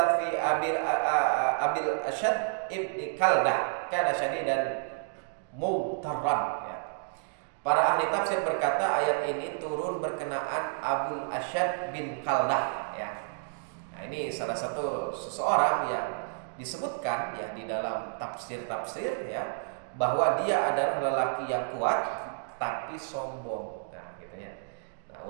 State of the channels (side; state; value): left; silent; digital silence